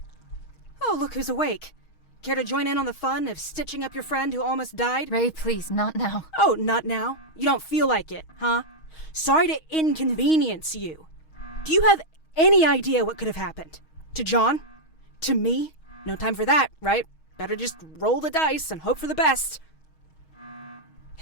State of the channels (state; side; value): late; right; 6.3 ms